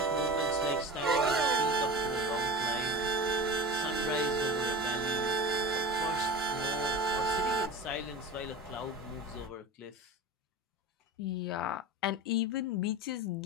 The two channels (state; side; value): normal; both; correlation 0.31